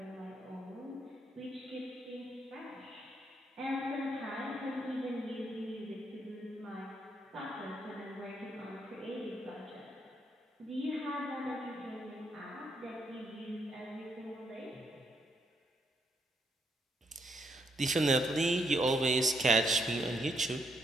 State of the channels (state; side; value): normal; both; correlation 0.76